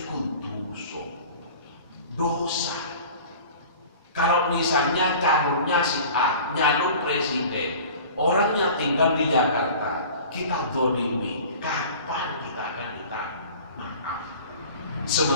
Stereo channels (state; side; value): inverted; both; correlation -0.42